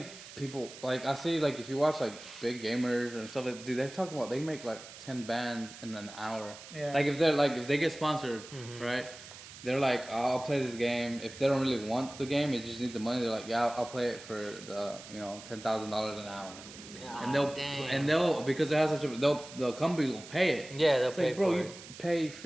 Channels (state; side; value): noise; right; hiss, 15 dB below the sound